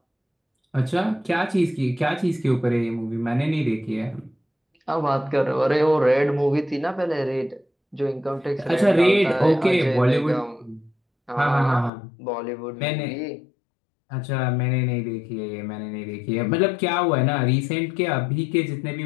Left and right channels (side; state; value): right; drops out; at 11.9 s